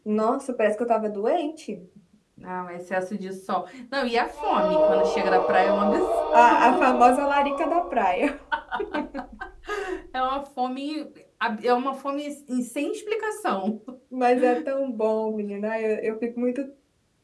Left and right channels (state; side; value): identical; both; correlation 1.00